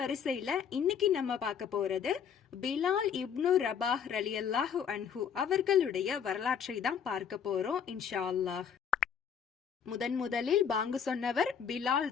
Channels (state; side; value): quieter; right; 7.6 dB